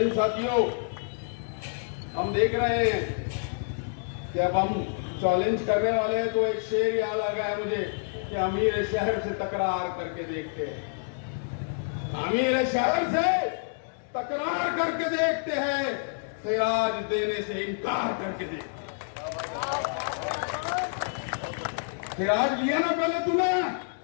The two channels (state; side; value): silent; right; digital silence